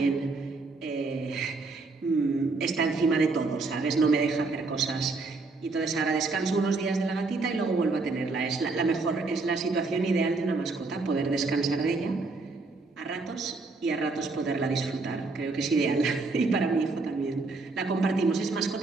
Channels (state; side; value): quieter; left; 3.7 dB